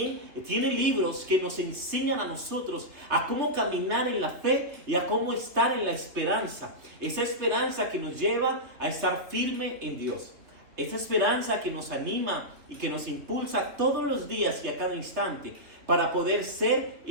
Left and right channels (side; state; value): left; late; 3.3 ms